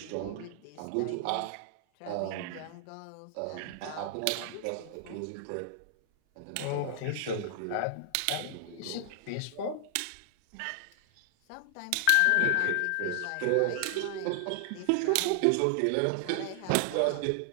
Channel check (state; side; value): different; both; correlation 0.00